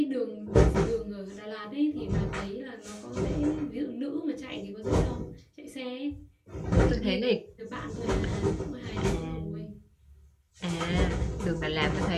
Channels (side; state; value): both; identical; correlation 1.00